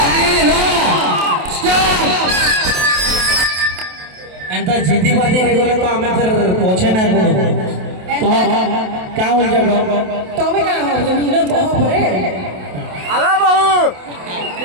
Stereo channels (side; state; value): left; late; 28 ms